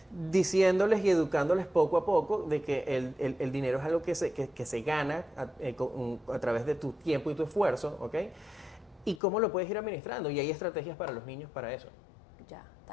diciéndoles y educándoles poco a poco de que el dinero es algo que se gana a través de tu tiempo y tu esfuerzo, ¿ok? Y cómo lo puedes ir administrando, y hay estrategias para los niños para eso. Ya,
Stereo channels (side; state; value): right; drops out; at 9.2 s